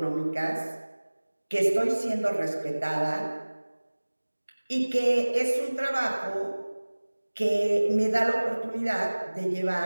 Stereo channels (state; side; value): inverted; both; correlation -1.00